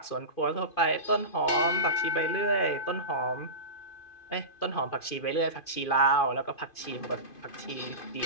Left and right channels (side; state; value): right; late; 2.5 ms